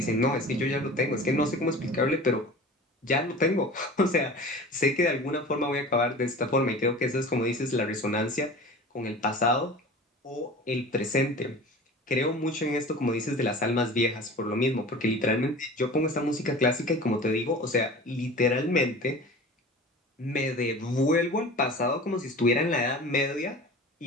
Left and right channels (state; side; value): normal; both; correlation 0.38